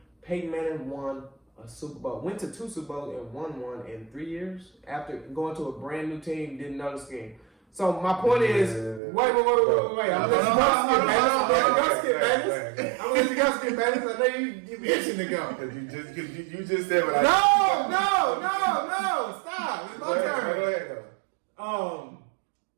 Peyton Manning won a Super Bowl, went to 2 Super Bowls and won one in 3 years after going to a brand new team, didn't know the scheme. So my point is, wait. I'm gonna let you go skip, Bayless. I'm gonna let you go skip, Bayless. I know you itching to go. You just said what I No, stop. It's my turn. Go ahead, though.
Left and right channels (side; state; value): left; drops out; at 9.0 s